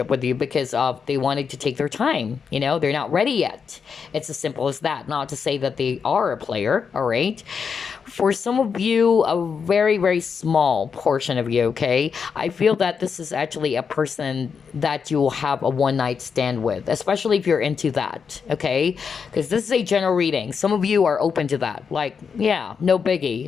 with you because they wanted to take their time. They're not ready yet. It's as simple as that. Not to say that they are a player, all right? For some of you, a very, very small portion of you, okay? I feel that this is actually a person that you will have a one-night stand with, especially if you're into that, okay? Because this is a general reading. Some of you are open to that. Like, yeah, no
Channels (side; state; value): right; quieter; 6.1 dB